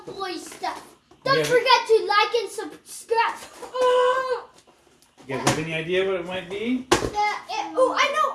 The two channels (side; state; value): both; identical; correlation 1.00